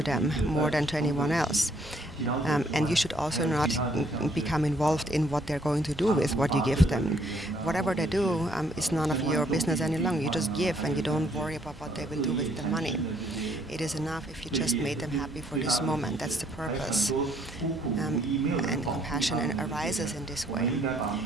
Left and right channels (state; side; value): normal; both; correlation 0.67